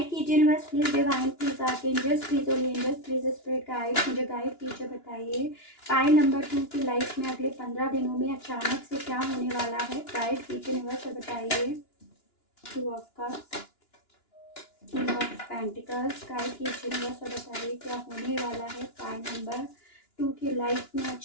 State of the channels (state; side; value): late; right; 2.9 ms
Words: कीजिए universe, please divine, please archangels, please holy angels, please spirit guide, मुझे गाइड कीजिए। बताइए पाइल नंबर 2 की लाइफ में अगले 15 दिनों में अचानक से क्या होने वाला है। गाइड कीजिए यूनिवर्स और बताइए। 2 of cups, king of pentacles, guide कीजिए यूनिवर्स और बताइए क्या होने वाला है पाइल नंबर 2 की लाइफ में